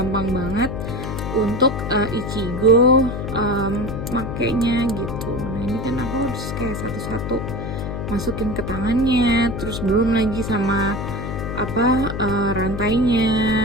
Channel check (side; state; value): left; noise; hum, 5 dB below the sound